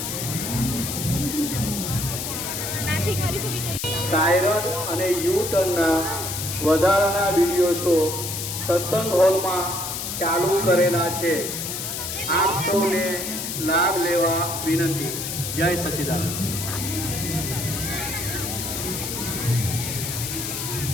સાયરન અને યુ ટર્નના વધારાના વિડીયો શો સત્સંગ હોલમાં ચાલુ કરેલા છે. આપ સૌને લાભ લેવા વિનંતી. જય સચ્ચિદાનંદ.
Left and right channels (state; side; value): noise; left; hiss, 4 dB below the sound